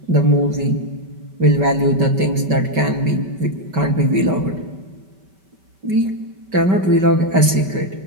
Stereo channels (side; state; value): left; late; 5.2 ms